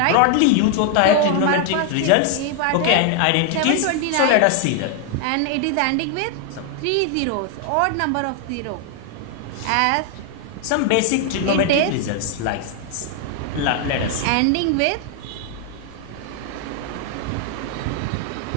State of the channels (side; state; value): both; different; correlation 0.00